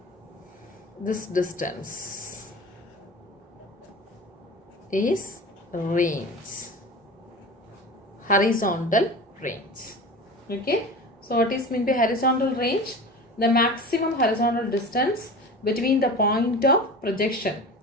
this distance is range, horizontal range. Okay, so what is meant by horizontal range? The maximum horizontal distance between the point of projection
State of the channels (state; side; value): normal; both; correlation 0.34